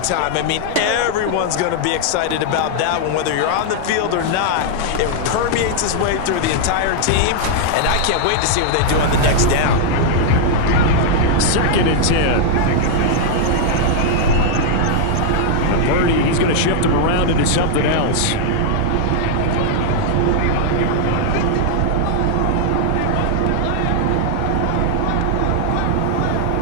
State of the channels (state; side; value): different; both; correlation -0.01